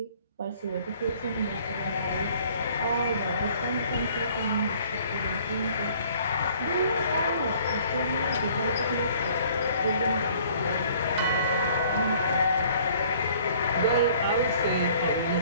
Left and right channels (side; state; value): both; inverted; correlation -0.56